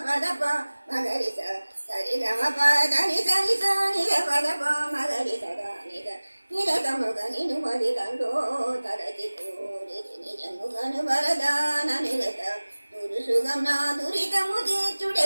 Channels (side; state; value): both; inverted; correlation -1.00